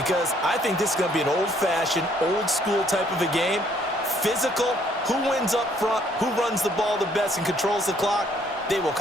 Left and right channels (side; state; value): both; normal; correlation 0.65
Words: I think this is going to be an old-fashioned, old-school type of a game. Physical, who wins up front, who runs the ball the best and controls the clock, they will